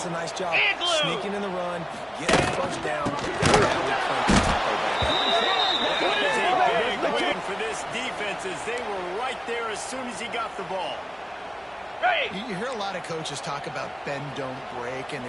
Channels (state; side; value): identical; both; correlation 1.00